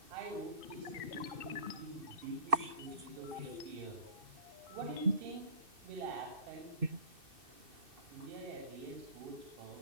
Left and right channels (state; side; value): late; left; 2.6 ms